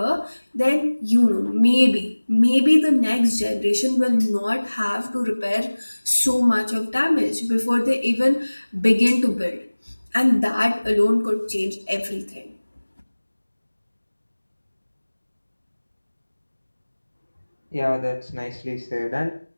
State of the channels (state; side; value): inverted; both; correlation -1.00